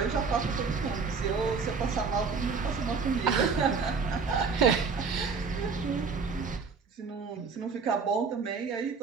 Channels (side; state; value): left; quieter; 5.1 dB